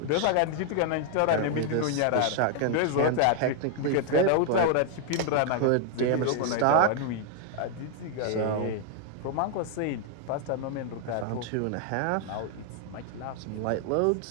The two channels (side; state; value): both; different; correlation 0.00